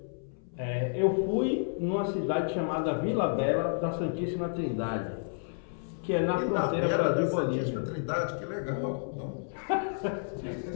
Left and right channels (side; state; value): right; silent; 57 dB below the other